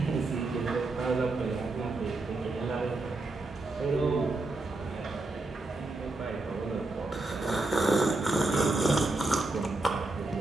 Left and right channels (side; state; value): left; quieter; 3.1 dB